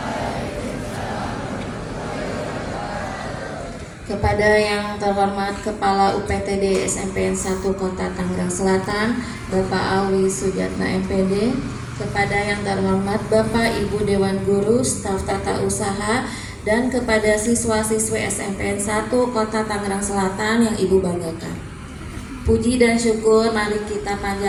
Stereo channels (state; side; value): identical; both; correlation 1.00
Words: Kepada yang terhormat Kepala UPTD SMPN 1 Kota Tangerang Selatan, Bapak Awi Sujatna MPD, kepada yang terhormat Bapak Ibu Dewan Guru, staf tata usaha, dan kepada siswa-siswi SMPN 1 Kota Tangerang Selatan yang Ibu banggakan. Puji dan syukur mari kita